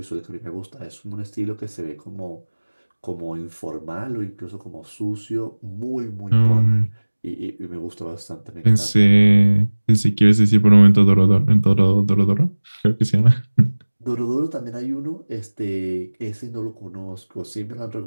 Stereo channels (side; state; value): both; inverted; correlation -1.00